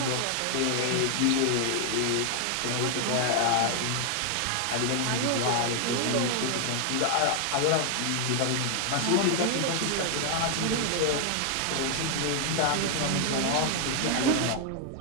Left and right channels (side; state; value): both; different; correlation 0.00